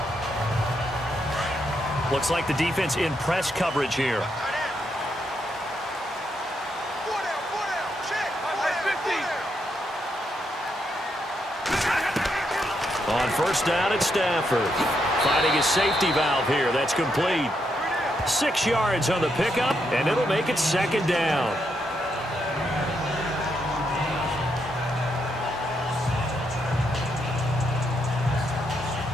Looks like the defense in press coverage here. On first down, it's Stafford. Finding his safety valve here. That's complete. 6 yards on the pickup, and it'll make it second down.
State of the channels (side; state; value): both; normal; correlation 0.79